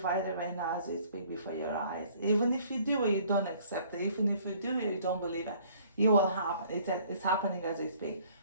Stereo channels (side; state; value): both; inverted; correlation -0.57